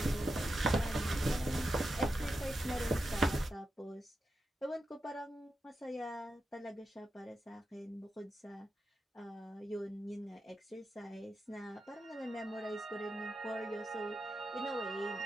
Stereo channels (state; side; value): normal; both; correlation 0.88